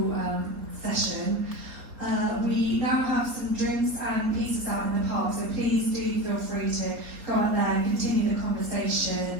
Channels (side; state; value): left; late; 3.6 ms